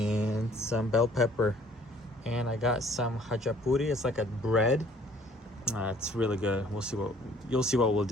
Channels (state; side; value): normal; both; correlation 0.57